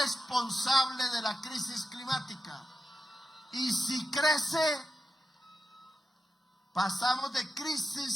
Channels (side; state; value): both; normal; correlation 0.90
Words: de la crisis climática. Y si crece, pasamos de